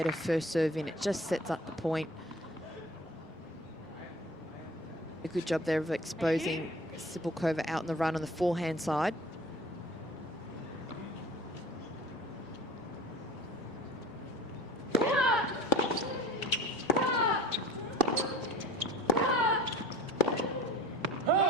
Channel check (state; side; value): normal; both; correlation 0.43